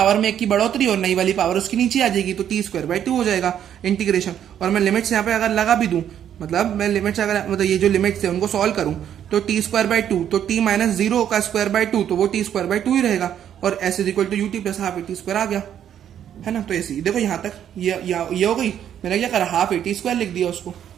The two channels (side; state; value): left; quieter; 9.8 dB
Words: में 1 की बढ़ोतरी, और नई वाली पावर उसकी नीचे आ जाएगी, तो t स्क्वायर बाई 2 हो जाएगा इंटीग्रेशन। और मैं लिमिट्स यहाँ पे अगर लगा भी दूं, मतलब मैं लिमिट्स अगर मतलब ये जो लिमिट्स है उनको सॉल्व करूं, तो t स्क्वायर बाई 2, तो t माइनस 0 का स्क्वायर बाई 2, तो वो t स्क्वायर बाई 2 ही रहेगा, और s is equal to ut plus half at square आ गया, है ना। तो ऐसे ही देखो यहाँ तक ये हो गई, मैंने क्या करा, हाफ at स्क्वायर लिख दिया उसको।